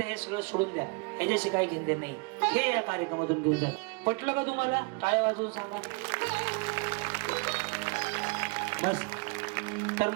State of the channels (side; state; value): left; quieter; 29.3 dB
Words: हे सगळं सोडून द्या, ह्याच्याशी काही घेणं देणं नाही. हे या कार्यक्रमातून घेऊन जात. पटलं का तुम्हाला? टाळ्या वाजवून सांगा. बस. तर